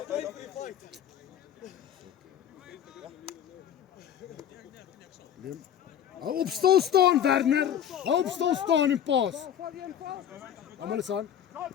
Liam. Hou op stil staan, Werner. Hou op stil staan en pas. Almal is aan.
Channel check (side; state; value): right; quieter; 9.6 dB